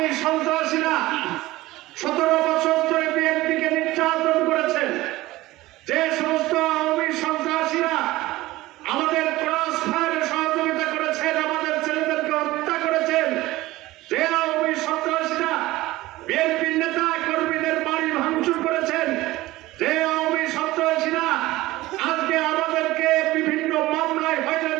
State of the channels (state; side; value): quieter; left; 18.1 dB